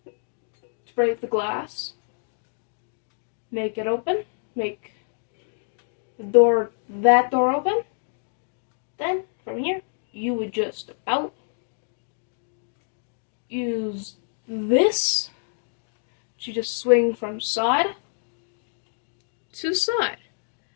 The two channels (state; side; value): silent; right; digital silence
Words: To break the glass, make it open, make that door open. Then from here, you would just about use this to just swing from side to side.